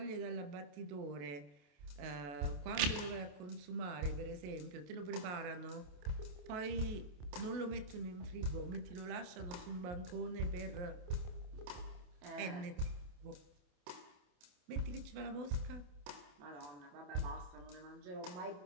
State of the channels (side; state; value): left; late; 28 ms